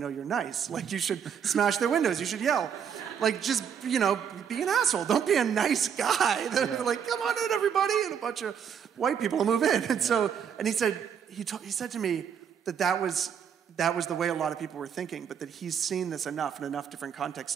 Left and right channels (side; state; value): left; quieter; 7.9 dB